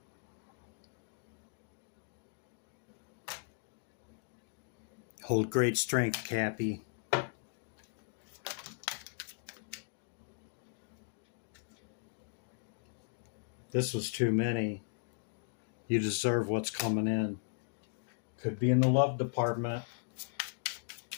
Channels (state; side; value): silent; right; digital silence